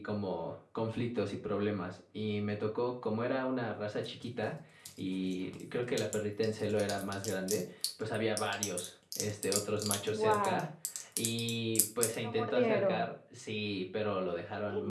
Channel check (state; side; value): identical; both; correlation 1.00